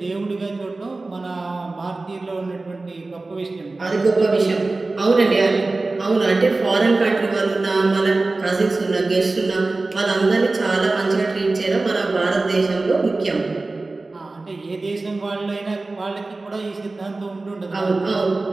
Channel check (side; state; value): left; quieter; 3.3 dB